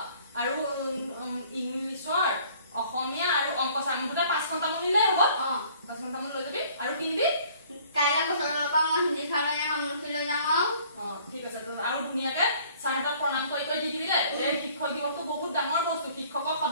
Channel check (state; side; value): inverted; both; correlation -0.56